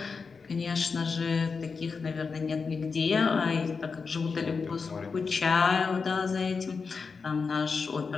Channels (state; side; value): quieter; right; 5.0 dB